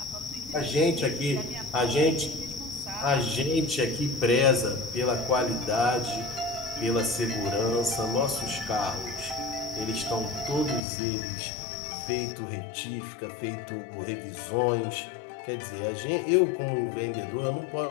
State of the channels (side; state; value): right; drops out; at 10.8 s